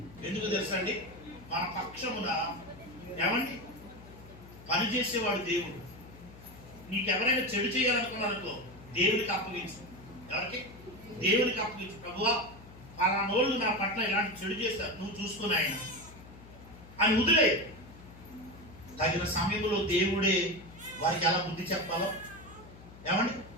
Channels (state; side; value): noise; left; hum, 18 dB below the sound